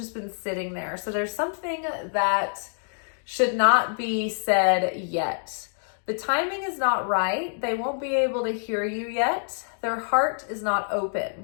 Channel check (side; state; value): right; silent; digital silence